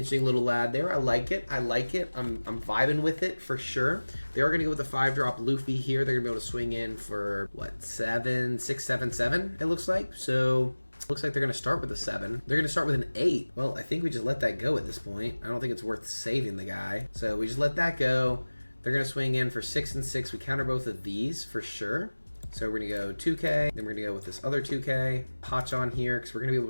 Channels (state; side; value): inverted; both; correlation -1.00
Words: little lad there. I like it. I like it. I'm vibing with it for sure. They are going to go with the 5-drop Luffy here. They're going to be able to swing in for, what, 7, 6, 7, 7, it looks like. So, looks like they're going to start with a 7. They're going to start with an 8. Well, I think we just let that go at this point. I don't think it's worth saving the guy. So, we just let that go. They're going to swing in for 6 and 6. We counter both of these for sure. So we're going to go 2K, then we're going to go with this other 2K, Hotch on here, because we're going to be